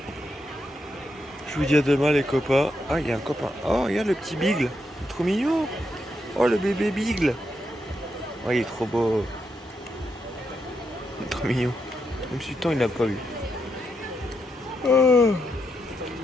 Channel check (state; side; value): normal; both; correlation 0.82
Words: Je vous dis à demain les copains. Ah il y a un copain. Oh regarde le petit Bigle. Trop mignon. Oh le bébé Bigle. Oh il est trop beau. Il est trop mignon. Même si le temps il l'a pas vu. Oh.